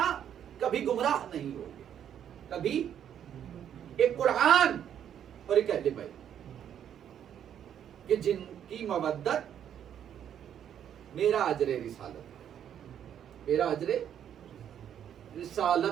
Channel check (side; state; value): left; quieter; 9.5 dB